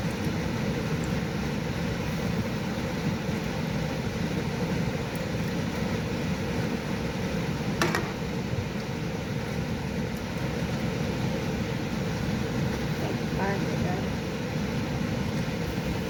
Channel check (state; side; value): identical; both; correlation 1.00